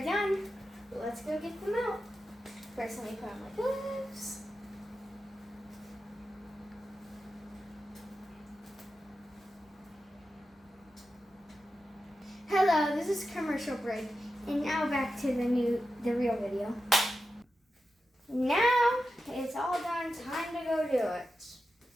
done. Let's go get them out. First, let me put on my gloves. Hello, this is commercial break, and now back to the real video. Now it's all done, time to go do it.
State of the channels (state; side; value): normal; both; correlation 0.91